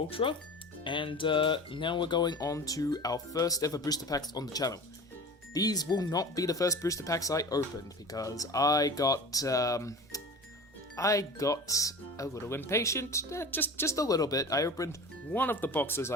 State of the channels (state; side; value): noise; right; hum, 30 dB below the sound